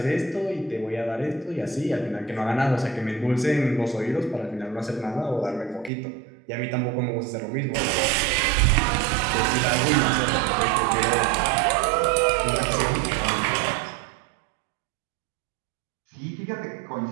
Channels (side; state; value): left; drops out; at 5.9 s